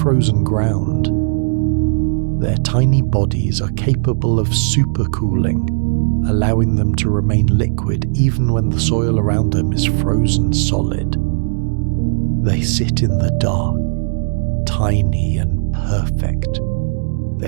ground. Their tiny bodies are capable of supercooling, allowing them to remain liquid even when the soil around them is frozen solid. They sit in the dark, tiny and perfect,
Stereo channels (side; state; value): left; silent; digital silence